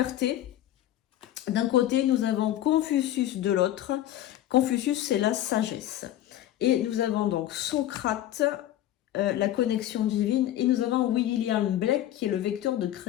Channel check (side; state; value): right; quieter; 12.9 dB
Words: d'un côté, nous avons Confucius de l'autre. Confucius, c'est la sagesse. Et nous avons donc Socrate, la connexion divine. Et nous avons William Blake, qui est le vecteur de